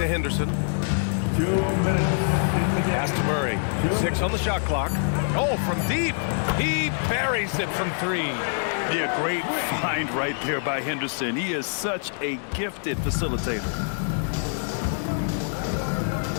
Henderson. 2 minutes. Pass to Murray. 6 on the shot clock. Oh, from deep. He buries it from 3. Yeah, great find right there by Henderson. He is such a gifted facilitator.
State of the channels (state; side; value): silent; right; digital silence